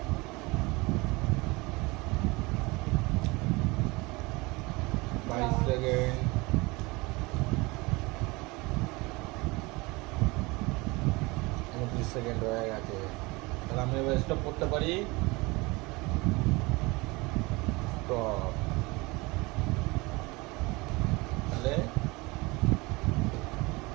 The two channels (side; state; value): left; quieter; 24.2 dB